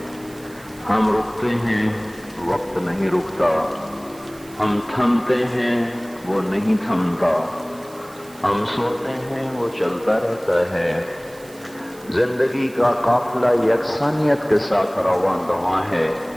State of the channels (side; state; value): right; noise; hiss, 23 dB below the sound